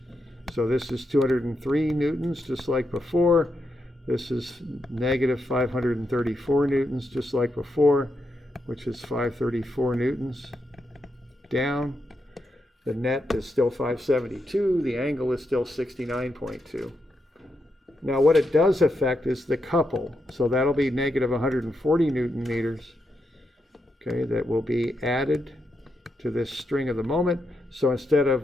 So this is 203 newtons, just like before. This is negative 534 newtons, just like before, which is 534 newtons down. The net is still 572. The angle is still 69.2. Now what it does affect is the couple. So that'll be negative 140 Newton meters. Okay, that will be added to this string of the moment. So instead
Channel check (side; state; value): both; normal; correlation 0.83